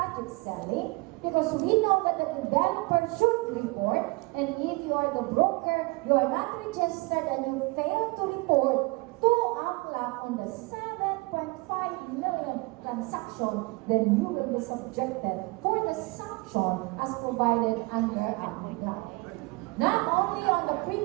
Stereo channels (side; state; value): left; quieter; 25.8 dB